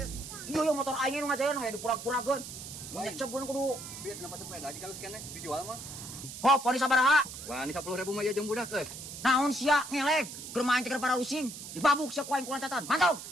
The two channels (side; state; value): right; noise; hiss, 11 dB below the sound